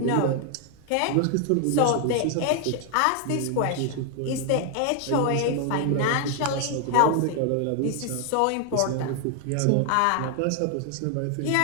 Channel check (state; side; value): different; both; correlation 0.00